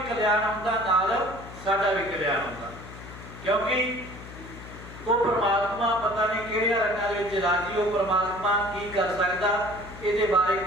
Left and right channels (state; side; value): noise; left; hum, 15 dB below the sound